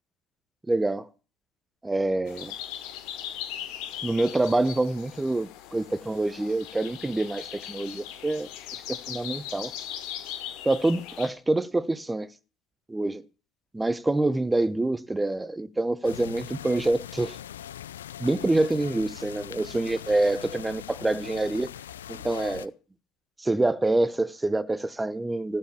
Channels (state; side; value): normal; both; correlation 0.94